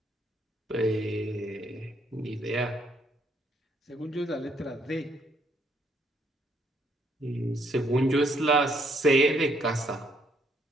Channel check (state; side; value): normal; both; correlation 0.70